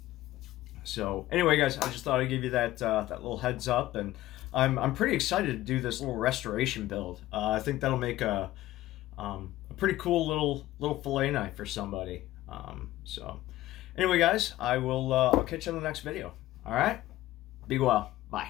So anyway, guys, I just thought I'd give you that little heads up, and I'm pretty excited to do this little restoration build. I think that'll make a pretty cool little fillet knife for somebody. So Anyway, guys, I'll catch you on the next video. All right? Be well.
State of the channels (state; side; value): quieter; right; 15.7 dB